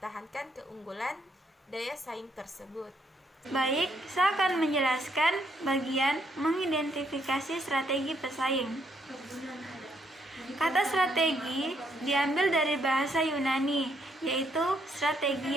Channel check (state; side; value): normal; both; correlation 0.73